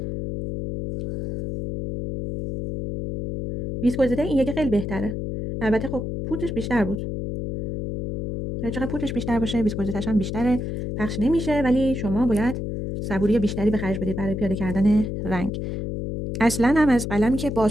ویسکوزیته این یکی خیلی بهتره، البته خب پودرش بیشتر بود. هر چقدر پودرش بیشتر باشه ویسکوزیتش هم بیشتره، پخش نمیشه، ولی شما باید صبوری بیشتری به خرج بدید برای پیاده کردن رنگ. اصلا هم از قلمی که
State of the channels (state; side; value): noise; left; hum, 4 dB below the sound